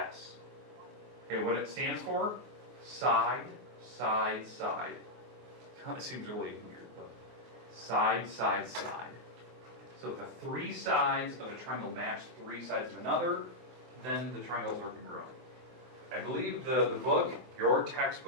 Okay, what it stands for? Side, side, side. Kind of seems really weird, but side, side, side. So if the 3 sides of a triangle match 3 sides of another, then the triangles are congruent. I believe the book, your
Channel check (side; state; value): left; late; 24 ms